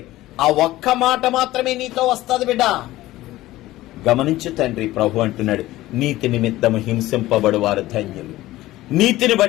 ఆ ఒక్క మాట మాత్రమే నీతో వస్తుంది బిడ్డ. గమనించు తండ్రి, ప్రభు అంటున్నాడు, నీతి నిమిత్తము హింసింపబడు వారు ధన్యులు. నీతిని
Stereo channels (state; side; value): quieter; right; 16.6 dB